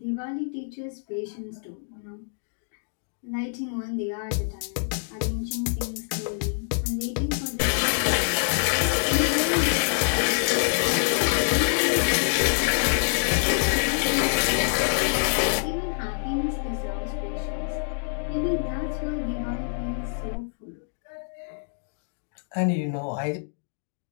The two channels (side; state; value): right; silent; digital silence